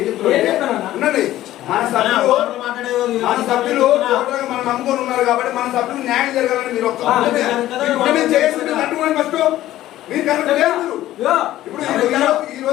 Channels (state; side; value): quieter; right; 14.3 dB